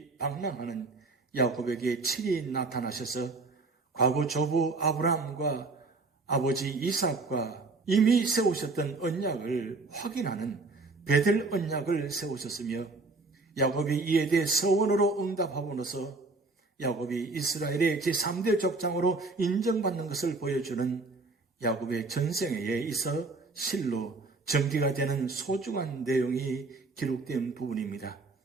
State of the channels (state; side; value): quieter; left; 3.5 dB